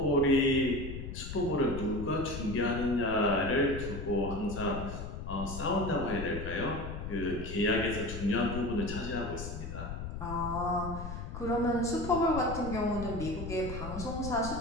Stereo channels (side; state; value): left; noise; rumble, 7 dB below the sound